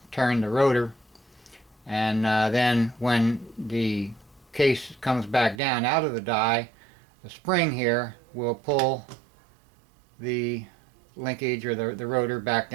turn the rotor. And then when the case comes back down out of the die, the spring here will pull the linkage or the rotor back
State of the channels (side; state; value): left; drops out; at 5.6 s